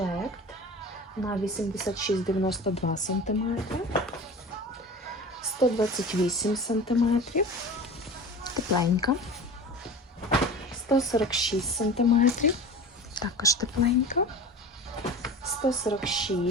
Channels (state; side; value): normal; both; correlation 0.35